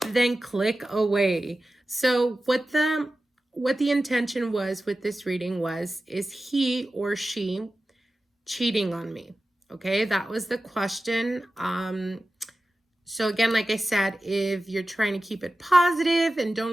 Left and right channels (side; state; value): both; normal; correlation 0.94